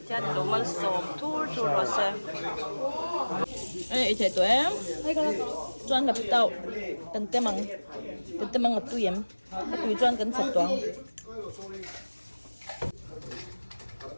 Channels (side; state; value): both; inverted; correlation -1.00